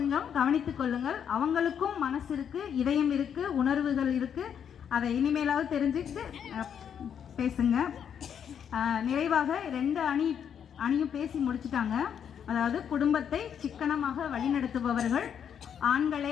கவனித்துக் கொள்ளுங்கள். அவங்களுக்கும் மனசு இருக்கு, இதயம் இருக்கு, உணர்வுகள் இருக்கு. அதை இனிமேலாவது தெரிஞ்சுக்கிட்டு பேசுங்க. நிறைவாக 2 அணியும் பேசி முடிச்சுட்டாங்க. அதாவது குடும்பத்தை சிக்கனமாக வழிநடத்துபவர்கள்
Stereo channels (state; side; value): quieter; right; 8.2 dB